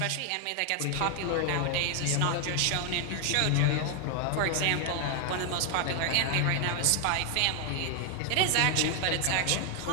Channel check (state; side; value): different; both; correlation 0.00